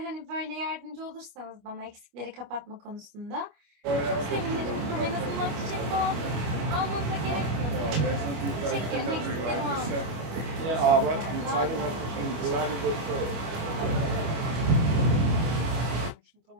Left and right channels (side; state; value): left; late; 25 ms